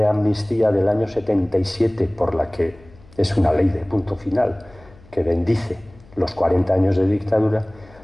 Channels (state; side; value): noise; left; hum, 25 dB below the sound